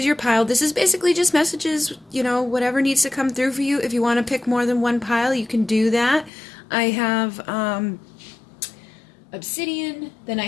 your pile. This is basically just messages, you know, whatever needs to come through for you. If you want to pick more than one pile, you can do that. I have obsidian. Then I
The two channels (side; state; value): right; drops out; at 6.3 s